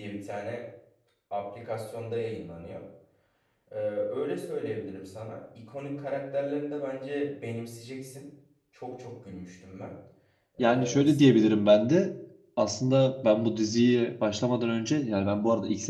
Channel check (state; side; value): identical; both; correlation 1.00